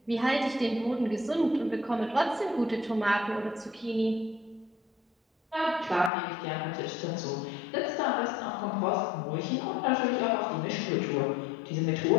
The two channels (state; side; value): drops out; right; at 6.1 s